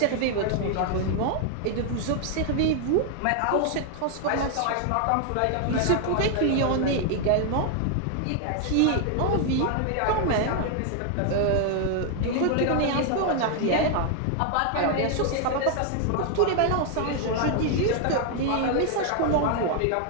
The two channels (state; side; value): different; both; correlation 0.00